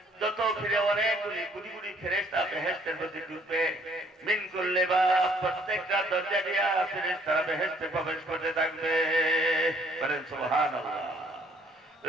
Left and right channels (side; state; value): both; normal; correlation 0.63